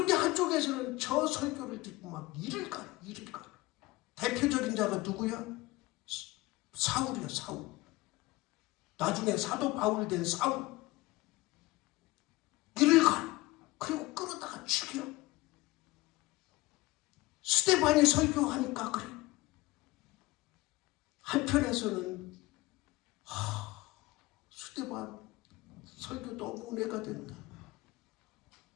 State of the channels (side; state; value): right; quieter; 20.4 dB